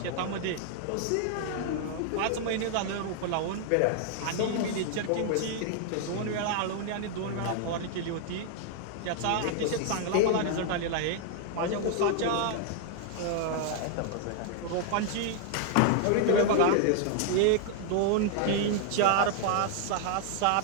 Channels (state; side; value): different; both; correlation 0.00